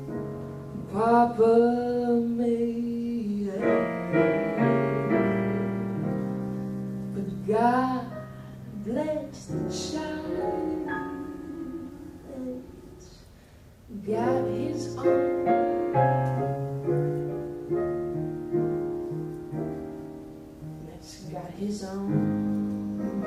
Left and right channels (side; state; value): both; identical; correlation 1.00